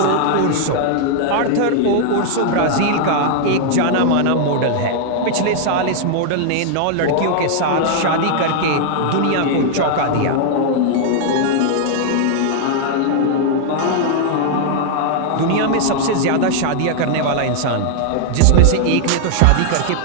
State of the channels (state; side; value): different; both; correlation 0.00